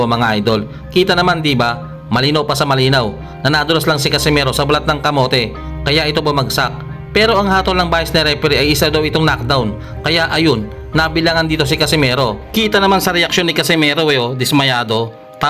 mga idol. Kita naman di ba? Malinaw pa sa malinaw na nadulas lang si Casimero sa balat ng kamote kaya ito bumagsak. Pero ang hatol ng bias na referee ay isa daw itong knockdown. Kaya ayun, nabilangan dito si Casimero. Kita naman sa reaksyon ni Casimero dismayado.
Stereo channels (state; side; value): identical; both; correlation 1.00